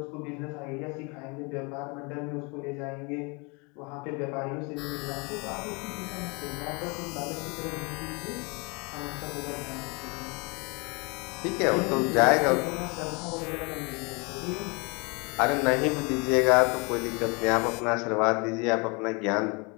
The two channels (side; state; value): right; quieter; 30.2 dB